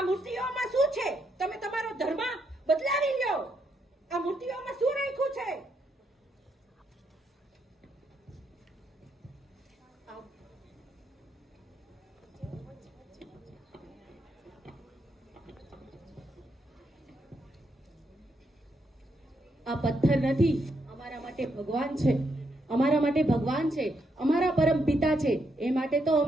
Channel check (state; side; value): normal; both; correlation 0.78